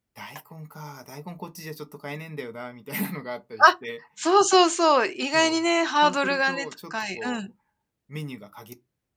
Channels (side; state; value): both; identical; correlation 1.00